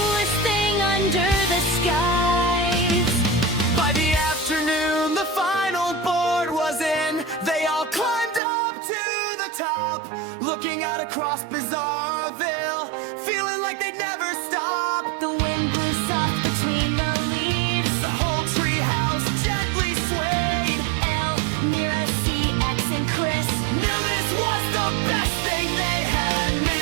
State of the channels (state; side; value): drops out; left; at 8.4 s